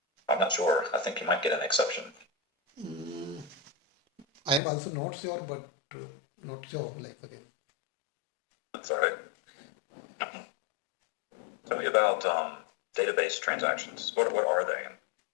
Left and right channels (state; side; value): drops out; right; at 4.6 s